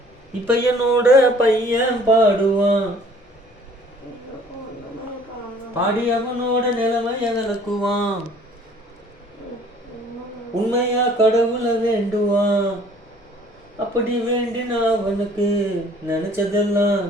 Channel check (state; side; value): normal; both; correlation 0.54